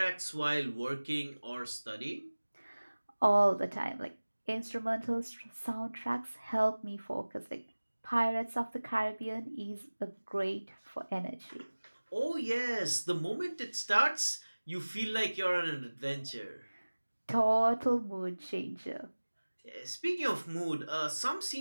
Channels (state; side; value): inverted; both; correlation -1.00